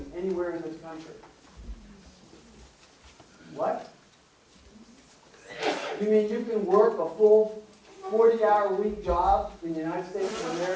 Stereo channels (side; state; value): both; identical; correlation 1.00